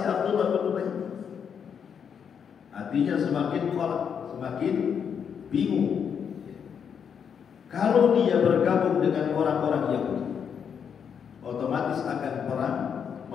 Abdullah bin Ubay. Artinya semakin kolak, semakin bingung. Kalau dia bergabung dengan orang-orang Yahudi, otomatis akan perang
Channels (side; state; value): right; quieter; 7.4 dB